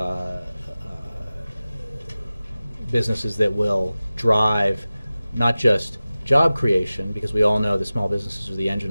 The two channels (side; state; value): both; inverted; correlation -0.97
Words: businesses that will drive not just job creation, because we all know that small businesses are the